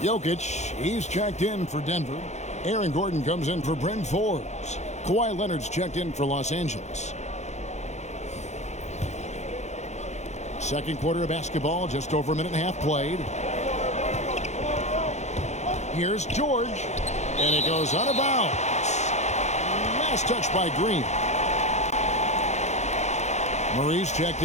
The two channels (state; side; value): late; right; 0.33 ms